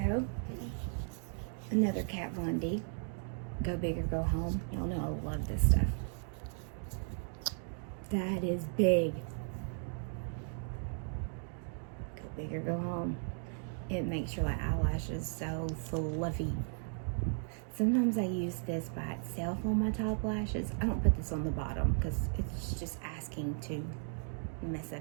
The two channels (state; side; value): silent; left; 54 dB below the other